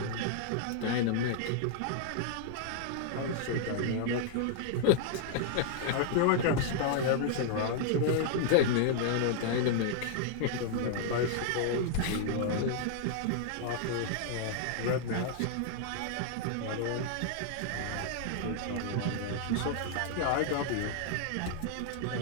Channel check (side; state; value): both; different; correlation -0.01